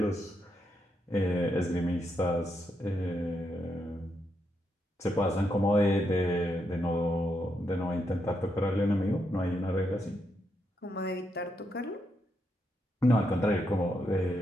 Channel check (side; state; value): both; normal; correlation 0.81